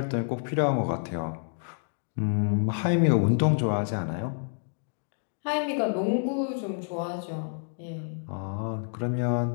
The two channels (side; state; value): right; silent; digital silence